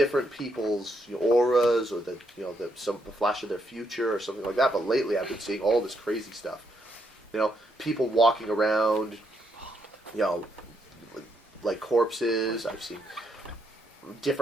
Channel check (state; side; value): normal; both; correlation 0.77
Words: people's auras or the flash of their future or something like that. But lately, I've been seeing all this crazy stuff. People walking around, like corpses. I've seen